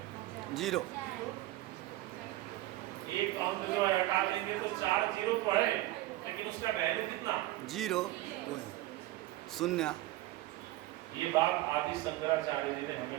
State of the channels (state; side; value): quieter; left; 16.7 dB